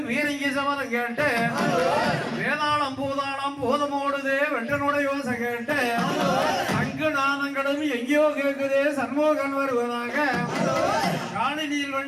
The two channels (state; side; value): identical; both; correlation 1.00